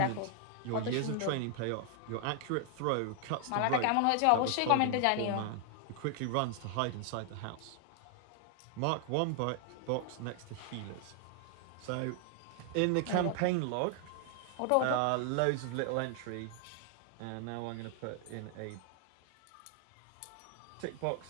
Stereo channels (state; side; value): different; both; correlation 0.00